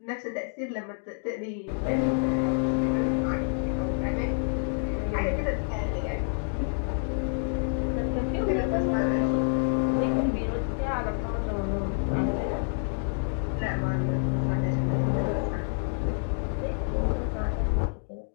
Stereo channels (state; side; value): silent; right; 59 dB below the other